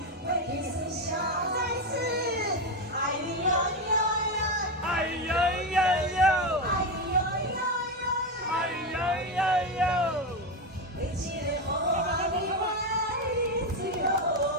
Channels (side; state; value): both; normal; correlation 0.12